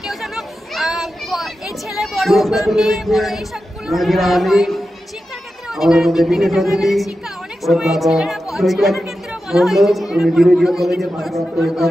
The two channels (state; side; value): normal; both; correlation 0.91